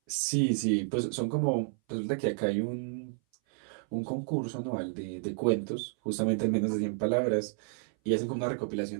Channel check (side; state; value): left; silent; 57 dB below the other